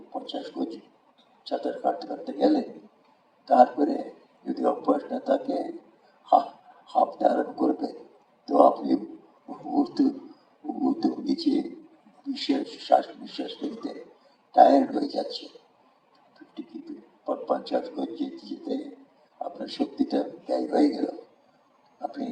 50 গজ সাঁতার কাটতে কাটতে গেলেন, তারপরে যদি অভ্যাস না থাকে হাঁপতে আরম্ভ করবেন, তো আপনি নিচে শ্বাস নিঃশ্বাস ফেলতে টায়ার্ড হয়ে যাচ্ছে। 50 গজ যেতে যেতে আপনার শক্তিটা ব্যয় হয়ে গেল, আপনি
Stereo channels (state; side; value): identical; both; correlation 1.00